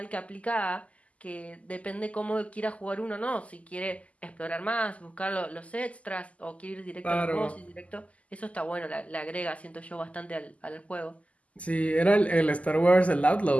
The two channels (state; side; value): late; right; 0.067 ms